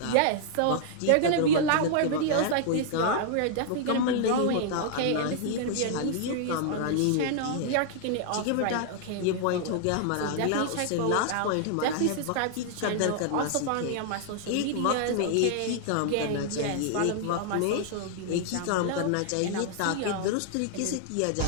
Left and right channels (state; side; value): different; both; correlation -0.01